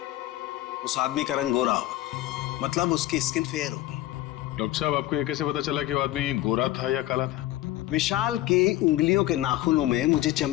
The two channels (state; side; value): quieter; right; 15.5 dB